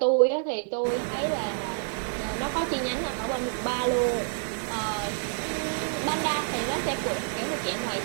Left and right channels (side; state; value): left; silent; digital silence